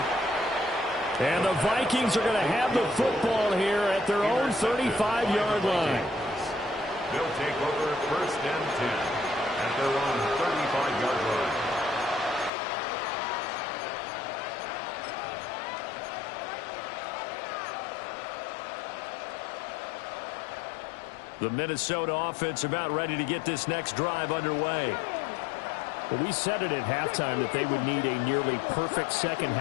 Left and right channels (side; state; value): right; drops out; at 12.5 s